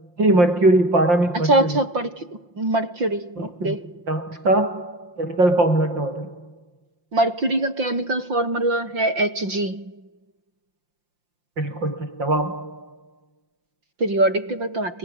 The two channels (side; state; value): left; late; 5.7 ms